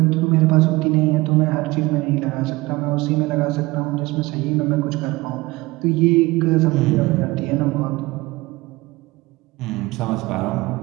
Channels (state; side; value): quieter; left; 21.1 dB